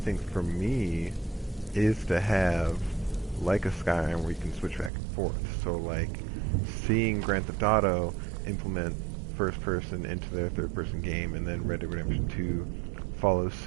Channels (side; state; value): left; drops out; at 4.9 s